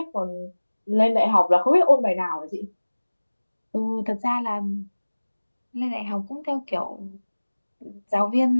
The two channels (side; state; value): both; inverted; correlation -1.00